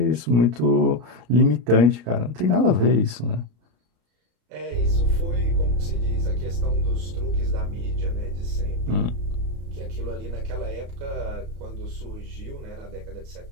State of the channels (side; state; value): left; late; 33 ms